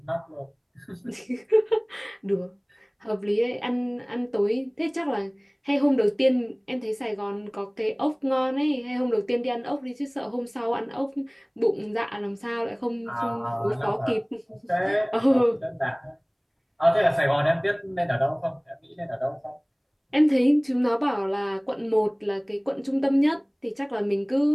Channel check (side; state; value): both; identical; correlation 1.00